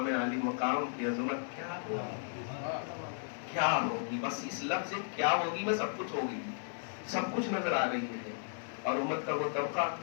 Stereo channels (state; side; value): silent; right; 55 dB below the other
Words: علی مقام کی عظمت کیا ہوگی، کیا ہوگی، بس اس لفظ سے کیا ہوگی میں سب کچھ ہوگی، سب کچھ نظر آ رہی ہے۔ اور امت کا وہ طبقہ